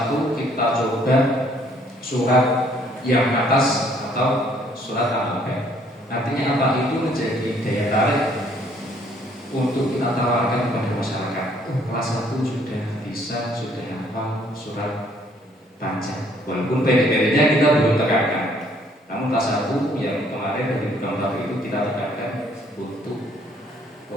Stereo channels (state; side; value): normal; both; correlation 0.63